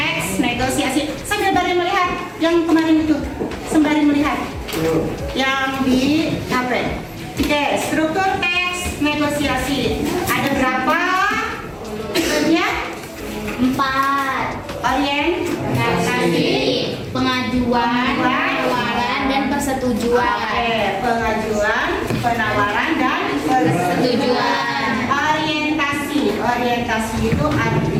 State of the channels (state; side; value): identical; both; correlation 1.00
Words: negosiasi. Sembari melihat yang kemarin itu, sembari melihat yang di HP. Oke, struktur teks negosiasi. Ada berapa? Bagian 4. orientasi, Pengajuan, penawaran, dan persetujuan. Oke, pengajuan, penawaran dan Persetujuan. Orientasi itu